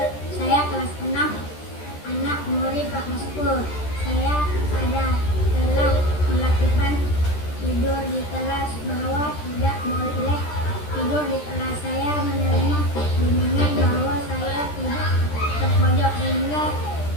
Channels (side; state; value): right; late; 13 ms